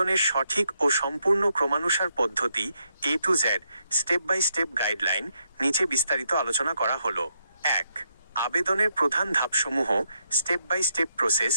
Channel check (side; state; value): both; inverted; correlation -0.79